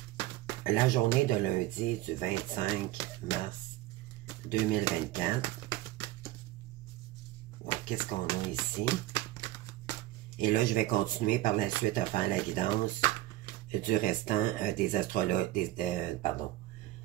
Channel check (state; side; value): quieter; left; 16.3 dB